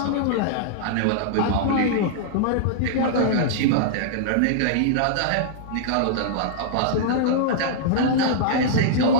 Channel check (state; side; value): different; both; correlation -0.02